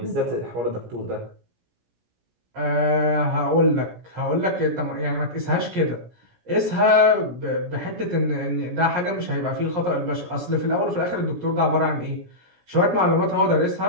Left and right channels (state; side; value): late; left; 17 ms